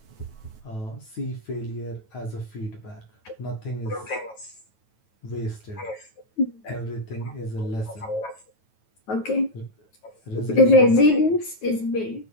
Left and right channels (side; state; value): right; late; 9.2 ms